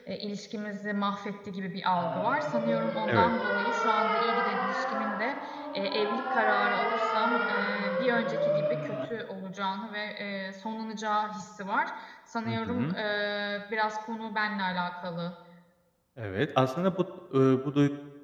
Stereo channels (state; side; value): identical; both; correlation 1.00